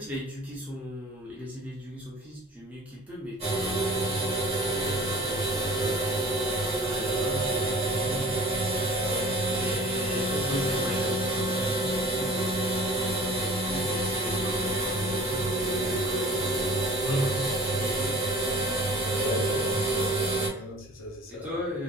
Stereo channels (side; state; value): both; normal; correlation 0.46